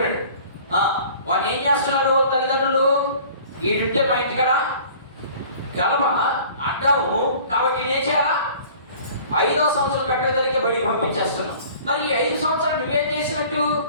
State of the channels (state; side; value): inverted; both; correlation -0.48